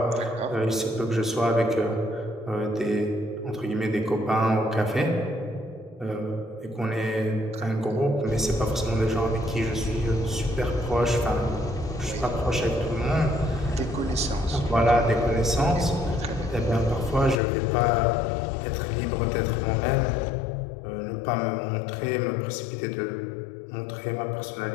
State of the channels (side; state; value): right; drops out; at 17.4 s